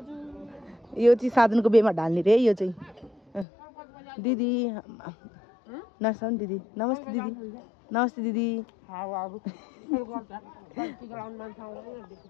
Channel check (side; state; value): right; drops out; at 3.5 s